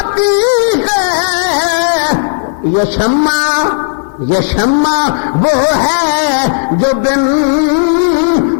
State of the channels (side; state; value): right; silent; digital silence